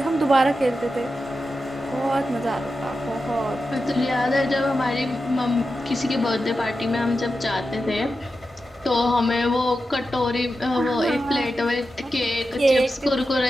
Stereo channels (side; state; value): both; normal; correlation 0.90